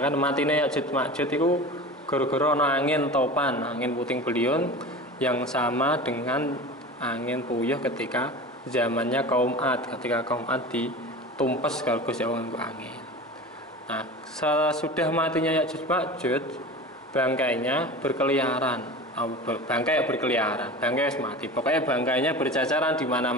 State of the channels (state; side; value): normal; both; correlation 0.33